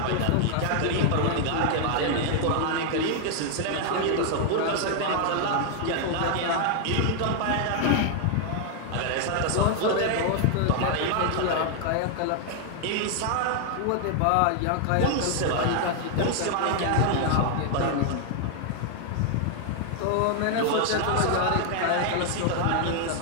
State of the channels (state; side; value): different; both; correlation 0.00